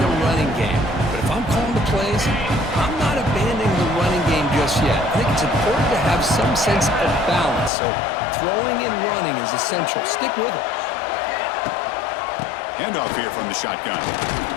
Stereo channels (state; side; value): drops out; right; at 7.7 s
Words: the running game. But if I'm calling the plays, I'm not abandoning the running game just yet. I think it's important to have some sense of balance. So throwing and running is essential. Stick with it. Handoff here from the shotgun.